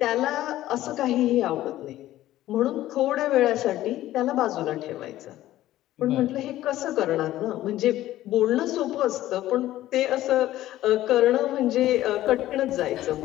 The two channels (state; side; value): quieter; right; 14.5 dB